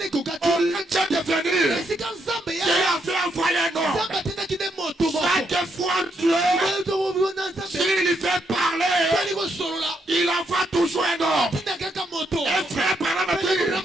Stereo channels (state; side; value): normal; both; correlation 0.78